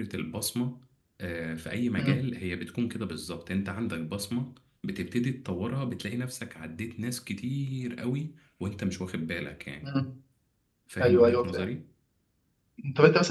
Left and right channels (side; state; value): both; identical; correlation 1.00